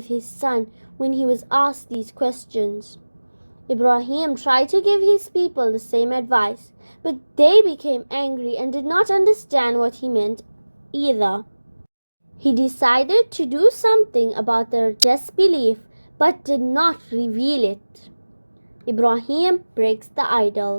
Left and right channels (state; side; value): inverted; both; correlation -1.00